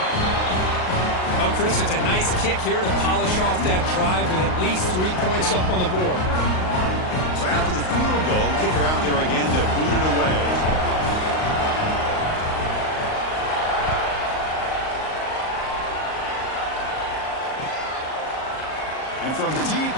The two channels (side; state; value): right; late; 38 ms